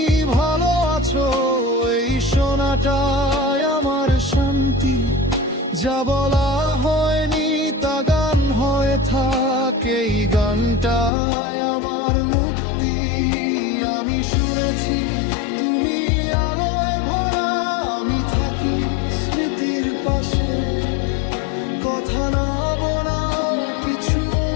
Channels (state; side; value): drops out; right; at 11.1 s